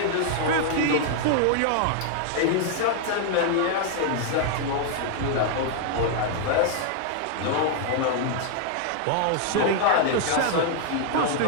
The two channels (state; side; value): different; both; correlation 0.00